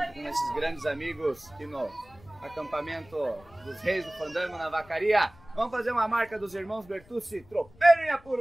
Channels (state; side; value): noise; left; rumble, 25 dB below the sound